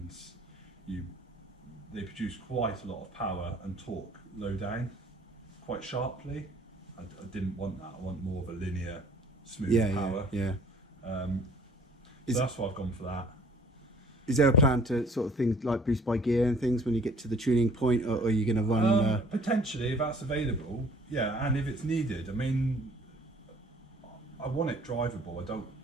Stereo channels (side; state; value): both; normal; correlation 0.54